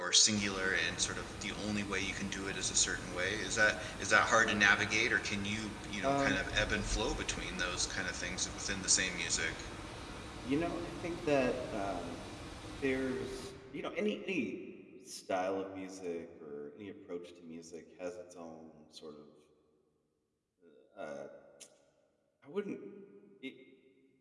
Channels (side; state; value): both; identical; correlation 1.00